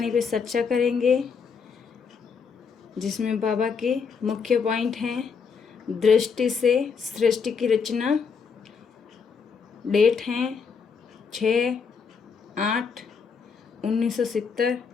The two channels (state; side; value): quieter; right; 5.8 dB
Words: पे चर्चा करेंगे, जिसमें बाबा के मुख्य पॉइंट हैं। दृष्टि से सृष्टि की रचना, डेट हैं 6/8/1970